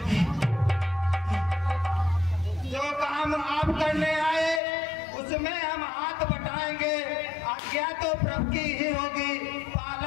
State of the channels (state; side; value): drops out; right; at 4.6 s